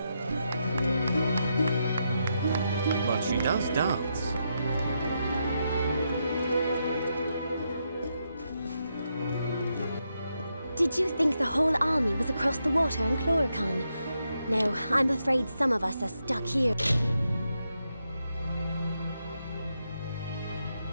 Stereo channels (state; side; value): inverted; both; correlation -0.83